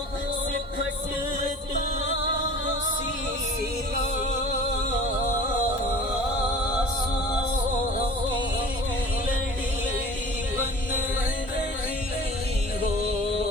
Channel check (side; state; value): both; normal; correlation 0.42